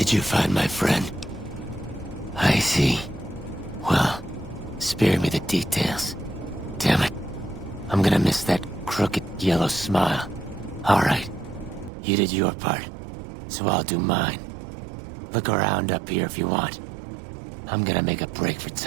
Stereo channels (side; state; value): left; drops out; at 11.9 s